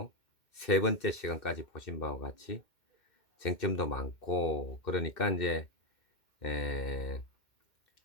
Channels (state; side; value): late; right; 2.1 ms